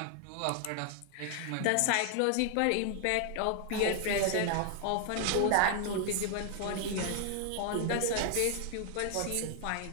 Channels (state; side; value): different; both; correlation 0.00